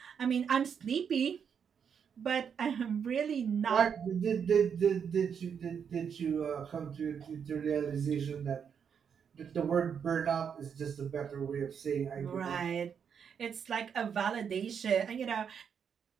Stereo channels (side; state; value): left; quieter; 7.3 dB